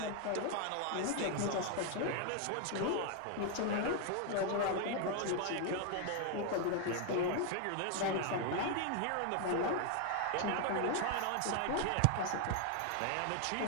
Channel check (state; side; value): different; both; correlation 0.00